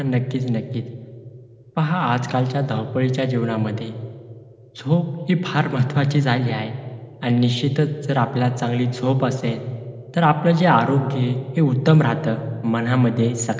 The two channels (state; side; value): identical; both; correlation 1.00